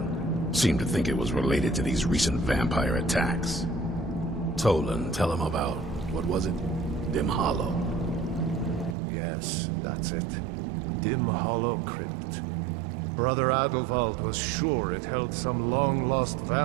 Seemed to think it was related to these recent vampire attacks. Tolan, tell him about, what was it? Dim Hollow. Yes, that's it. Dim Hollow Crypt. Brother Adelwald was sure it held some long-lost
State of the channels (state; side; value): drops out; left; at 9.0 s